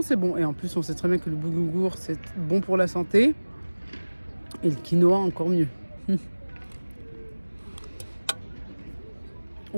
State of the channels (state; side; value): inverted; both; correlation -1.00